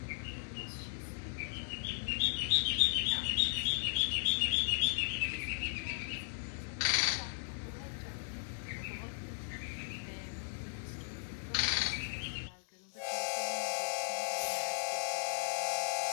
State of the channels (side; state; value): right; silent; digital silence